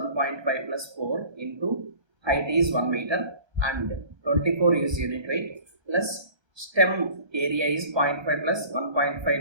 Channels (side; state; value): left; late; 1.3 ms